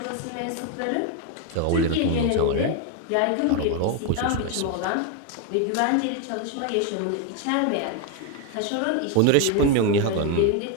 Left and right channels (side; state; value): both; different; correlation 0.01